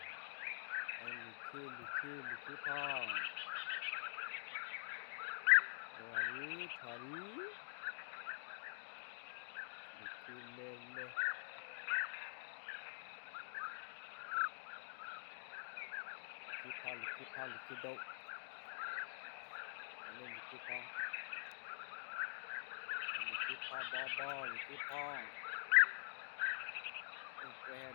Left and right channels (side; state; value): right; silent; digital silence